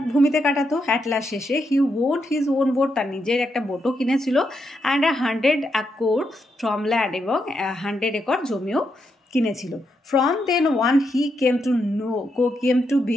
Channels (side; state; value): both; normal; correlation 0.81